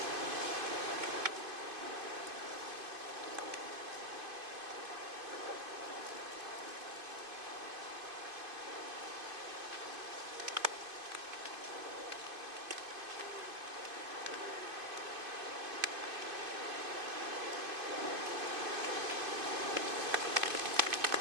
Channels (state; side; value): late; left; 2.5 ms